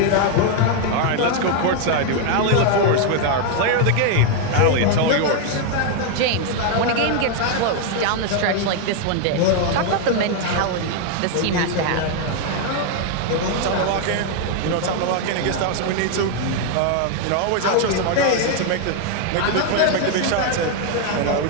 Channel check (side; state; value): both; different; correlation 0.00